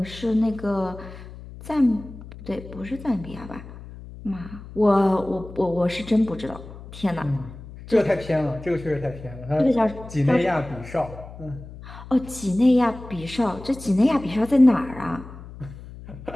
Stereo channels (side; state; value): left; noise; hum, 15 dB below the sound